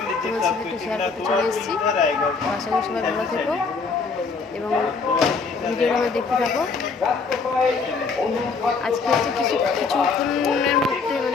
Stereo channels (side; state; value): right; quieter; 4.7 dB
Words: তোমাদের সাথে একটু শেয়ার করতে চলে এসেছি। আশা করি সবাই ভালো থেকো এবং ভিডিওটা আমার দেখতে থাকো। আজকে হচ্ছে কিছুক্ষণের মধ্যে,